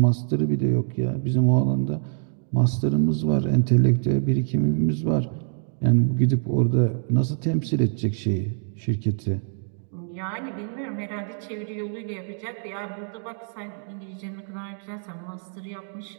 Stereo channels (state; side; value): silent; left; digital silence